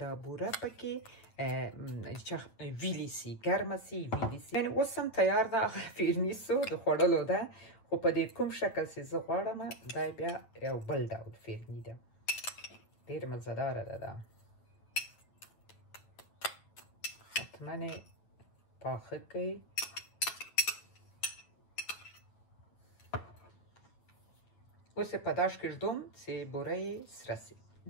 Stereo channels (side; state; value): right; late; 9.1 ms